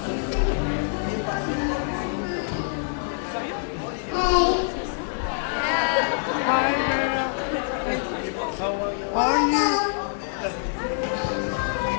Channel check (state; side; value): silent; right; digital silence